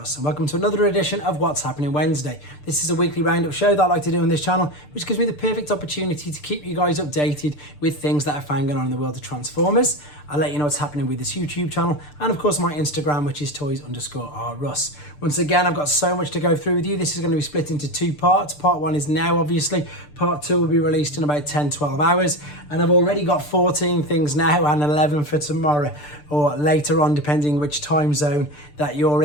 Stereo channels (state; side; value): late; right; 6.8 ms